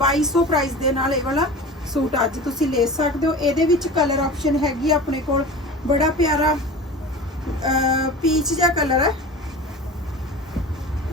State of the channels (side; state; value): both; normal; correlation 0.34